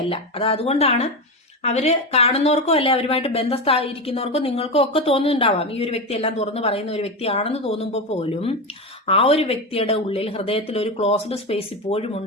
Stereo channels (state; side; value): normal; both; correlation 0.16